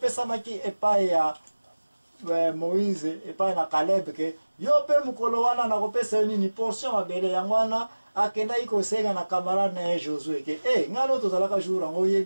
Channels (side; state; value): both; inverted; correlation -1.00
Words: epai ya Moïse epai na Caleb ke yo pe mukolo wana na kopesa yo nini portion mabele yango wana akenda ikosenga na camarade na Josué ke ngano tozalaka jour yango